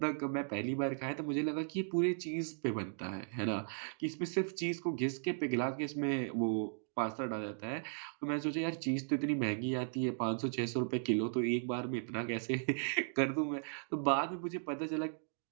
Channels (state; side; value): silent; left; digital silence